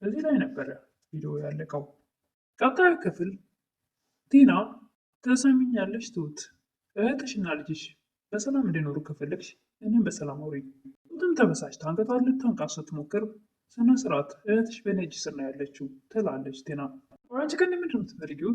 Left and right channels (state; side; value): identical; both; correlation 1.00